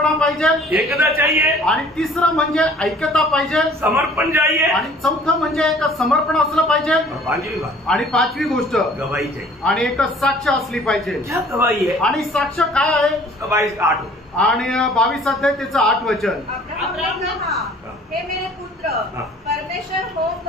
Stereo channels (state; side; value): normal; both; correlation 0.53